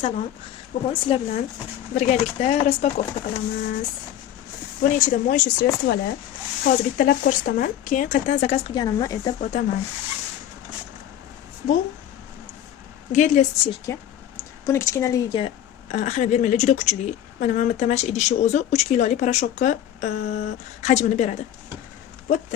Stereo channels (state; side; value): quieter; right; 11.1 dB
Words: salom. Bugun sizlar bilan birgalikda raspakovka qilamiz. Buni ichida mo'yshu sredstvolar. Hozir bittalab ko'rsataman, keyin qayerdan zakaz qilganimni aytib o'taman. Bu gedli stirka. Buni kichkinaligiga ahamiyat bermanglar, juda kuchli. Mana bitta mash idishi o'zi 3 kilolik parashokka hajmini beradi. Bu